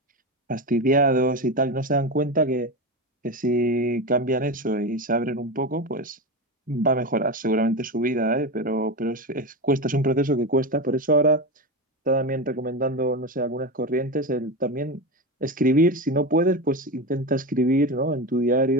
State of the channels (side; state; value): both; normal; correlation 0.19